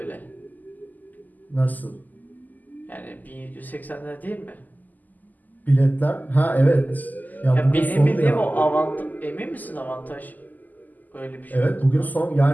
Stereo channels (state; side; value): late; right; 0.083 ms